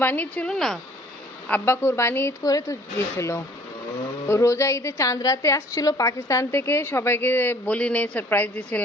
ছিল না, আব্বা কুরবানি ঈদ করে তো গিয়েছিল। রোজা ঈদে চাঁদ রাতে আসছিল পাকিস্তান থেকে, সবাইকে বলি নেই, সারপ্রাইজ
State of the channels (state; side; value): normal; both; correlation 0.55